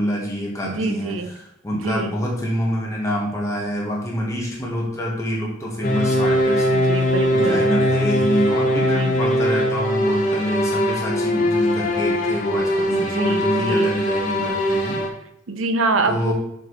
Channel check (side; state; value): both; normal; correlation 0.62